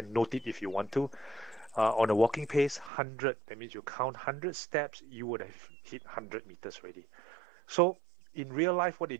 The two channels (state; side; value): drops out; left; at 2.9 s